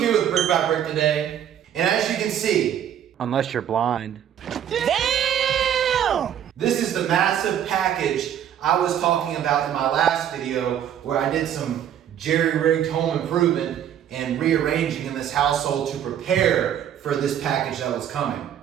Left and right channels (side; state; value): left; quieter; 9.9 dB